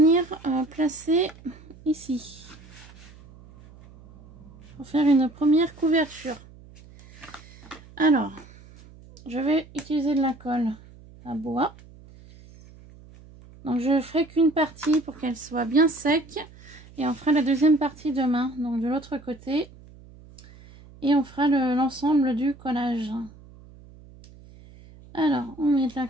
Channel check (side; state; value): right; noise; hum, 22 dB below the sound